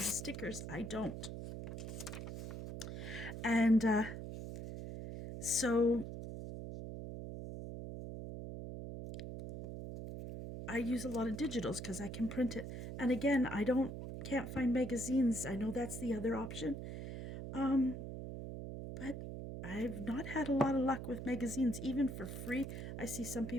stickers, I don't. And so I use a lot of digitals because I can print it. And again, I can't find magazines. I know that's the other option. But I've not had a lot of luck with magazines, even for free. I see some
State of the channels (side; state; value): right; noise; hum, 7 dB below the sound